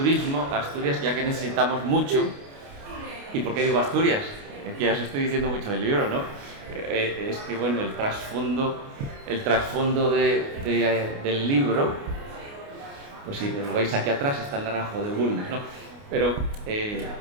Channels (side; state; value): left; late; 29 ms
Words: a Asturias, ya que necesitamos mucho. ¿Y por qué digo Asturias? Que ya os estoy diciendo mucho del libro, ¿no? Es que, bueno, el trasfondo del libro, pues si lo veis aquí atrás, está el naranjo de Bulnes, ¿no? Pero